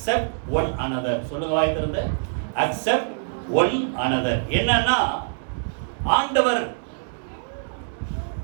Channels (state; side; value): silent; left; digital silence